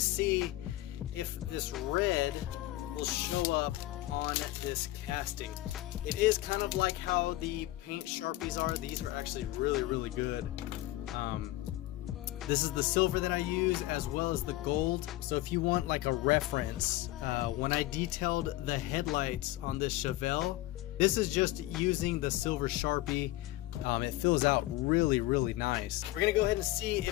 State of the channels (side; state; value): right; quieter; 16.7 dB